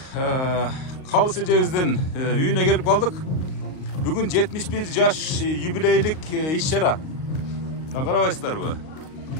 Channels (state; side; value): late; right; 38 ms